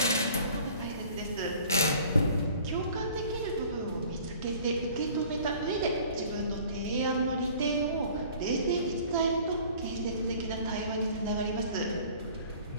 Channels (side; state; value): both; inverted; correlation -0.50